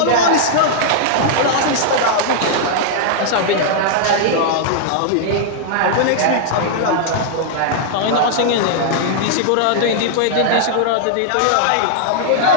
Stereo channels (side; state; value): both; different; correlation -0.01